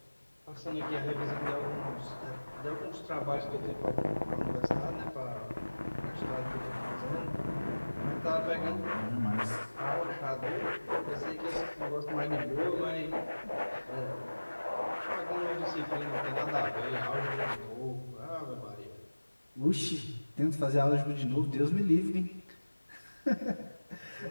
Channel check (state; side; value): inverted; both; correlation -1.00